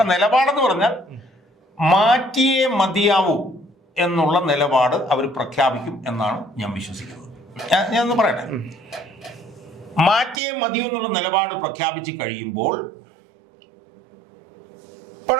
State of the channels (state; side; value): drops out; left; at 10.4 s